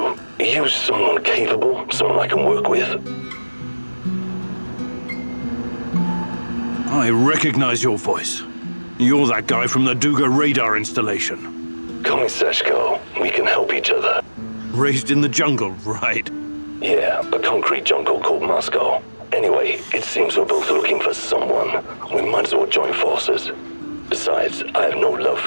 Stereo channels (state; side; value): inverted; both; correlation -1.00